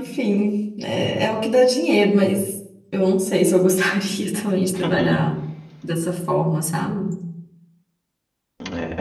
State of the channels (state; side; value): identical; both; correlation 1.00